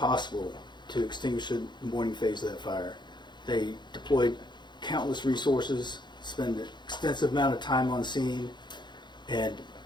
to extinguish the morning phase of that fire. They deployed countless resources, spent an extensive amount of time on scene, and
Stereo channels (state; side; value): late; right; 0.22 ms